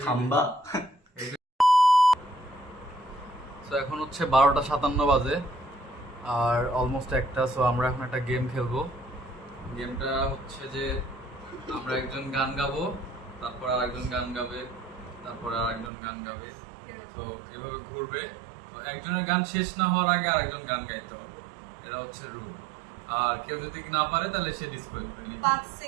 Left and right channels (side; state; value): left; drops out; at 15.9 s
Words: খাম্বা। তো এখন হচ্ছে 12:57 বাজে আর অলমোস্ট একটা। সো আমরা এখন একটা গেম খেলবো। গেমটা হচ্ছে যে আমরা একজন গান গাবো, তারপর আর একজন গান গাবে, তারপর আর একজন গান গাবে। তো এভাবে ঘুরবে। তো একজনের গান শেষ না হওয়ার আগে আরেকজন গান গাইতে হবে, এটা হচ্ছে রুল। আর কেউ যদি না পারে তাহলে সে ডিসকোয়ালিফাই। 5